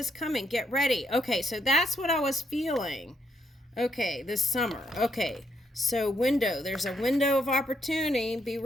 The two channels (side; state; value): both; normal; correlation 0.75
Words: coming. Get ready. Okay, so that's what I was feeling. Okay, this summer. Okay, so window. There's a window of opportunity. Be